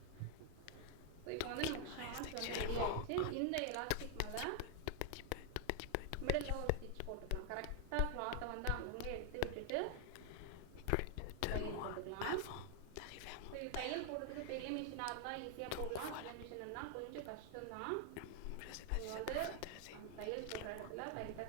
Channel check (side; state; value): both; different; correlation 0.01